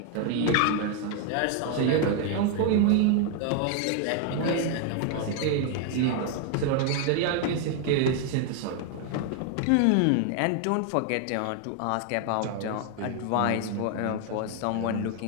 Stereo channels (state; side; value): different; both; correlation 0.00